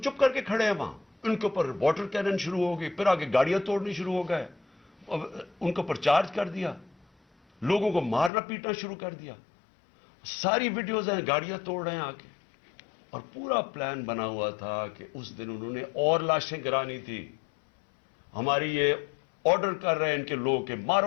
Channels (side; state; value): right; drops out; at 8.3 s